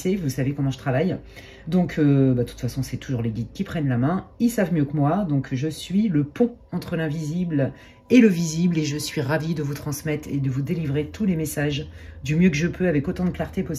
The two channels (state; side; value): identical; both; correlation 1.00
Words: vous savez comment je travaille. Donc, de toute façon, c'est toujours les guides qui prennent la main. Ils savent mieux que moi. Donc, je suis le pont entre l'invisible et le visible. Et je suis ravie de vous transmettre et de vous délivrer tous les messages du mieux que je peux avec autant de clarté